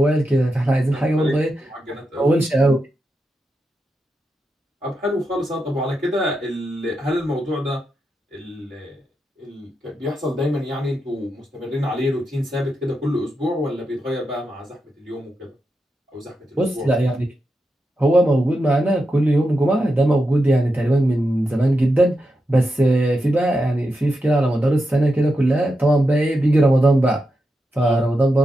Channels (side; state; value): both; normal; correlation 0.87